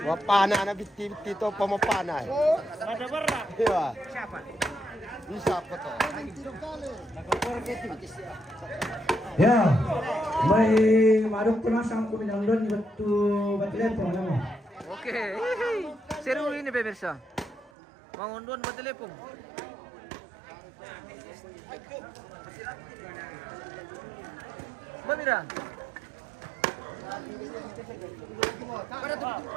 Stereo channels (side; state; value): left; drops out; at 17.7 s